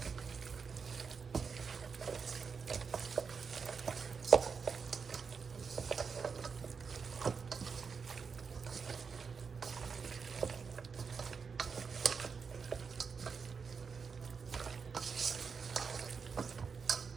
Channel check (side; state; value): left; quieter; 5.6 dB